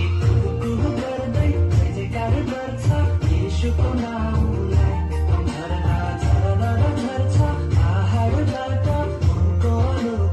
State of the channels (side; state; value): both; identical; correlation 1.00